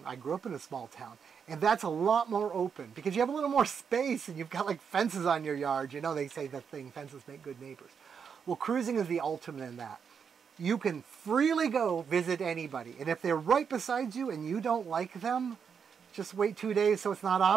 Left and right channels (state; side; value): quieter; left; 6.7 dB